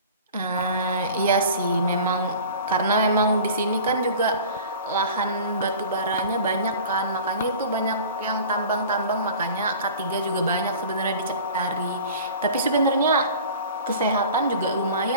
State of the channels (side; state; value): both; inverted; correlation -0.41